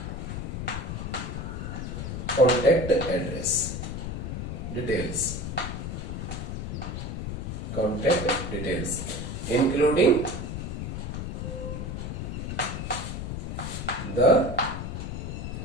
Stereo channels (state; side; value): noise; left; rumble, 4 dB below the sound